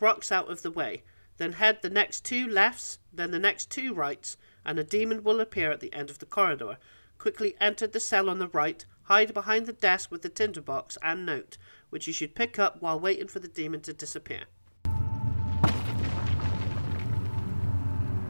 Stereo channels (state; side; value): inverted; both; correlation -1.00